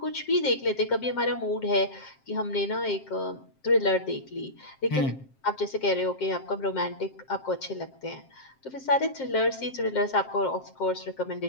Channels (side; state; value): right; late; 7.5 ms